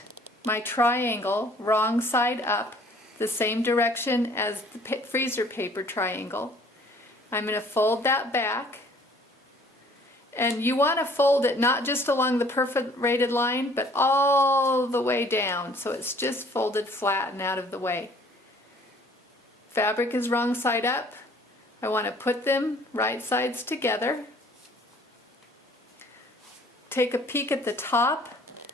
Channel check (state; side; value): normal; both; correlation 0.56